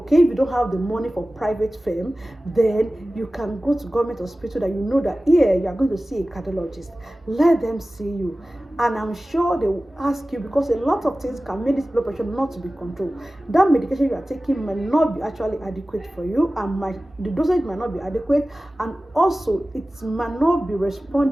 if you don't have the money for private firm, then you can go to government hospital that you know that here you are going to see a cardiologist. Let them see you, and I'm sure they will ask you, because a lot of things can make this blood pressure not to be controlled. That medication you are taking might not be actually adequate for you, and the dosage might not be adequate, and also it might not be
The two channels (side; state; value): both; normal; correlation 0.96